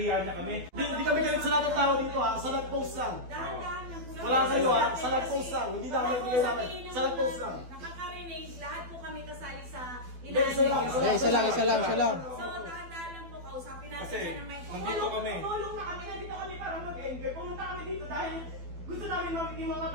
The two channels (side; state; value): left; late; 12 ms